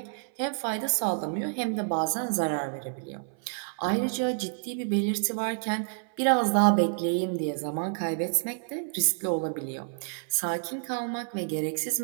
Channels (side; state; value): left; silent; 56 dB below the other